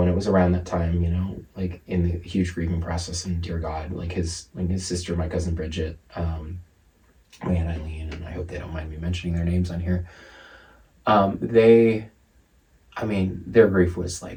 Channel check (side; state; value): both; identical; correlation 1.00